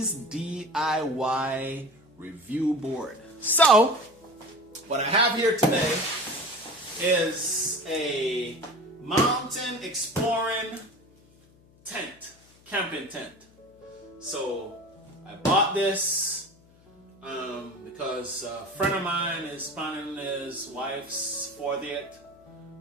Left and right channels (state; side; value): noise; left; hum, 28 dB below the sound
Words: DIY review board. So, what I have here today is a mountain exploring tent, camping tent. So, I bought this because a friend of mine is planning his wife's 40th